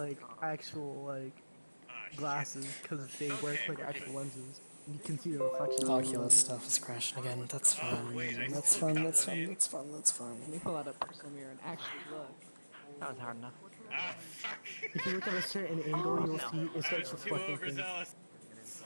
actual, like, glasses. Because they work like actual lenses. You can see the reflection. Oculus stuff is crashing again. That's fun. That's fun. That's fun. That's fun. That's fun. Let me pull out a personal mirror and actually look. That was hard enough. If you look at a certain angle, you'll see it starts reflecting things.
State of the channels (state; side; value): inverted; both; correlation -1.00